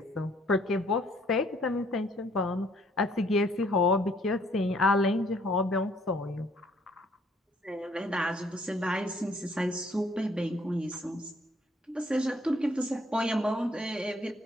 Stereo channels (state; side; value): normal; both; correlation 0.63